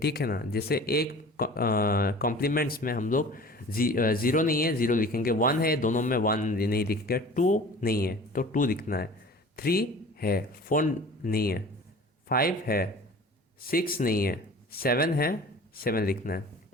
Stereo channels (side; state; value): both; normal; correlation 0.42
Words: है ना। जैसे एक कॉम्प्लीमेंट्स में हम लोग ज़ीरो नहीं है, ज़ीरो लिखेंगे, वन है, दोनों में वन नहीं लिखेंगे, टू नहीं है तो टू लिखना है, थ्री है, फोर नहीं है, फाइव है, सिक्स नहीं है, सेवन है, सेवन लिखना है,